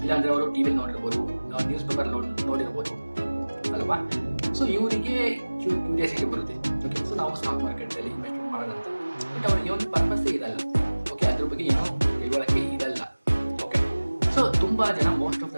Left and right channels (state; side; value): inverted; both; correlation -1.00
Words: ಇಲ್ಲಾಂದರೆ ಅವರು ಟಿ ವಿಲಿ ನೋಡಿರ್ಬೋದು, ನ್ಯೂಸ್ ಪೇಪರ್ ನೋಡಿರ್ಬೋದು ಅಲ್ವಾ. ಸೊ ಇವರಿಗೆ ಕ್ಯೂರಿಯಾಸಿಟಿ ಬರುತ್ತೆ, ಓಕೆ ಸೊ ನಾವು ಸ್ಟಾಕ್ ಮಾರ್ಕೆಟಲ್ಲಿ ಇನ್ವೆಸ್ಟ್ಮೆಂಟ್ ಮಾಡೋದಂತ. ಬಟ್ ಅವರಿಗೆ ಒಂದು ಪರ್ಪಸ್ಸೇ ಇರಲ್ಲ, ಓಕೆ ಅದ್ರ ಬಗ್ಗೆ ಏನೋ ತಿಳುವಳಿಕೆ ಇರಲ್ಲ. ಓಕೆ ಸೊ ತುಂಬ ಜನ ಮೋಸ್ಟ್ ಆಫ್